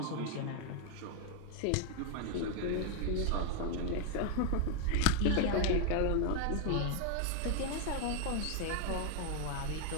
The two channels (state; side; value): different; both; correlation 0.01